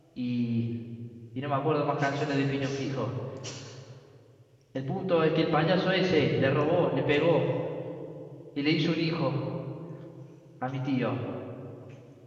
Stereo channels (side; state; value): both; identical; correlation 1.00